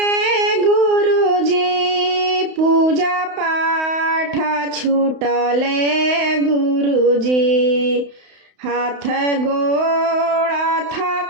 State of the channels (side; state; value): left; late; 31 ms